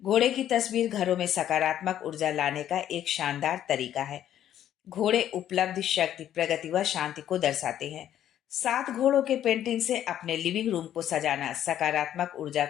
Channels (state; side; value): quieter; right; 11.1 dB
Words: घोड़े की तस्वीर घरों में सकारात्मक ऊर्जा लाने का एक शानदार तरीका है। घोड़े उपलब्धि, शक्ति, प्रगति व शांति को दर्शाते हैं। 7 घोड़ों के पेंटिंग से अपने लिविंग रूम को सजाना सकारात्मक ऊर्जा